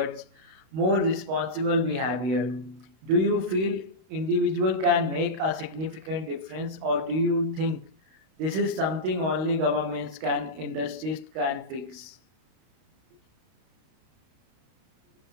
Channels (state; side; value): late; left; 32 ms